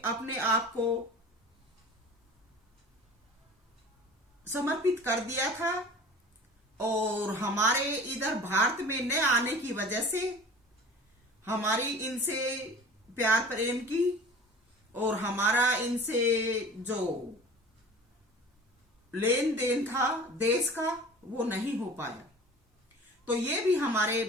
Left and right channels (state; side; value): normal; both; correlation 0.41